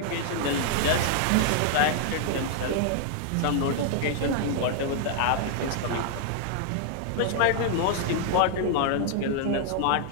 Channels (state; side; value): different; both; correlation 0.00